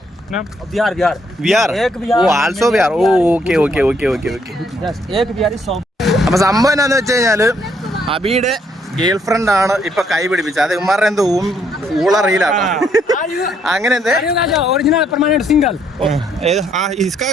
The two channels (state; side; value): normal; both; correlation 0.70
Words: Bihar. Bihar. Ek Bihar. Oh, also Bihar. Oh, okay. Yes. Ek Bihar is so. അപ്പൊ സംഭവം എന്താന്ന് വെച്ച് കഴിഞ്ഞാല് അബിയുടെ ഗേൾ ഫ്രണ്ട് ആണ് ഇപ്പൊ കൈ പിടിപ്പിച്ചത്. അത് ഉമ്മാരുടെ എന്തോ ഊള റീലാണ്. അങ്ങനെ എന്തേ Original permanent single. इसका